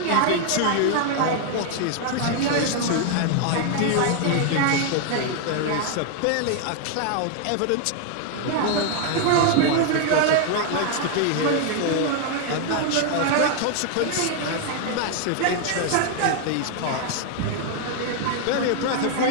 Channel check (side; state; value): both; different; correlation 0.00